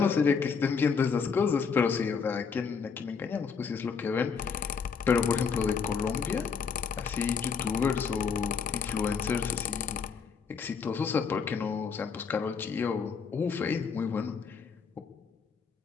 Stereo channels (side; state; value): right; quieter; 5.9 dB